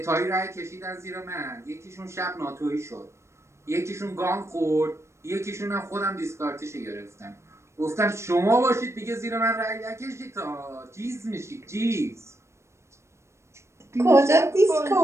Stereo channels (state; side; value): late; left; 0.13 ms